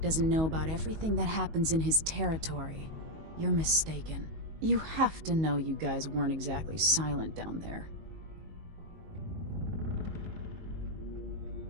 doesn't know about everything that happens in his territory, you're mistaken. You have to know you guys weren't exactly silent down there.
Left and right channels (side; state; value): left; late; 19 ms